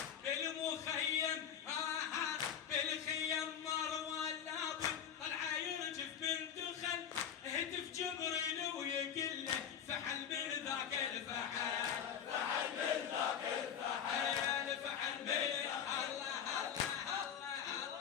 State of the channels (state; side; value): quieter; right; 8.5 dB